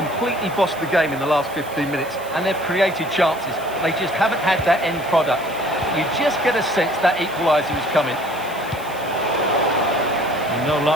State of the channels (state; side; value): noise; right; hiss, 19 dB below the sound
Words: bossed the game in the last 15 minutes and they've created chances. They just haven't had that end product. You just get a sense that equaliser is coming. No